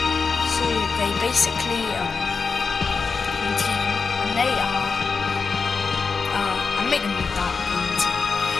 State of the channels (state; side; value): quieter; right; 4.9 dB